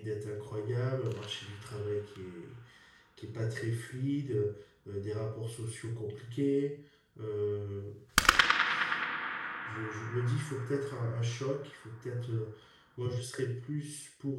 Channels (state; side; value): identical; both; correlation 1.00